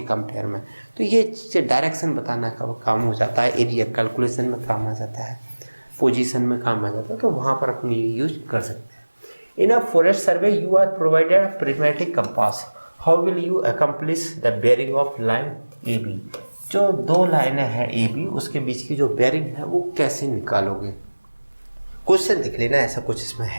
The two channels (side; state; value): both; inverted; correlation -1.00